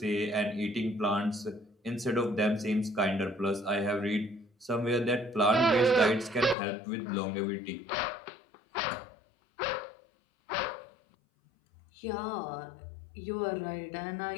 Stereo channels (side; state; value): right; drops out; at 6.6 s